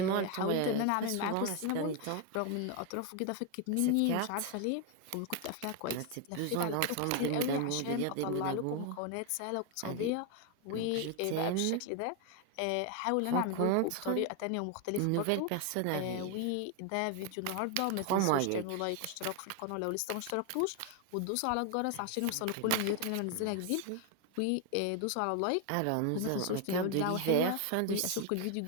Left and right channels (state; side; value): different; both; correlation 0.01